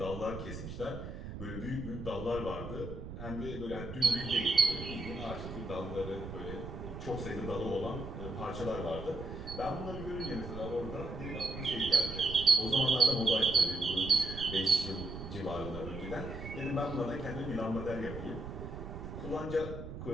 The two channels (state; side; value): noise; right; rumble, 9 dB below the sound